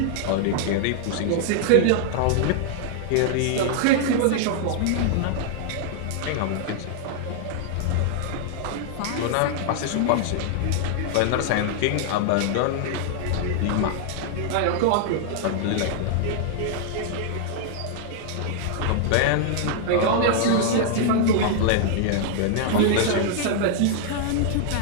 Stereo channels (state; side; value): different; both; correlation -0.01